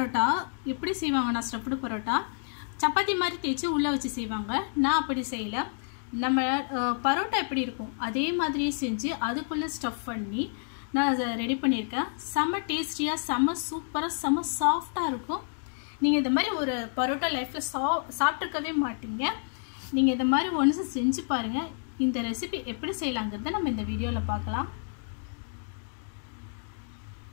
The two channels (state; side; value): silent; right; digital silence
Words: எப்படி செய்வாங்கன்னா ஸ்டஃப்டு பரோட்டா சப்பாத்தி மாதிரி தேய்ச்சி உள்ள வச்சு செய்வாங்க. நான் அப்படி செய்யல. நம்ம பரோட்டா எப்படி இருக்கும் அதே மாதிரியே செஞ்சு அதுக்குள்ள ஸ்டஃப் பண்ணி நான் ரெடி பண்ணியிருக்கேன். செம டேஸ்டியா, செம சூப்பரா, செம சாஃப்டா இருக்கும். நீங்க இந்த மாதிரி ஒரு பரோட்டா லைஃப்ல சாப்பிட்டுக்கவே மாட்டீங்க. நீங்க இந்த மாதிரி ஒன்ஸ் செஞ்சு பாருங்க. இந்த ரெசிபி எப்படி செய்யலாம்ங்கறத நம்ம இந்த வீடியோல பார்க்கலாம்.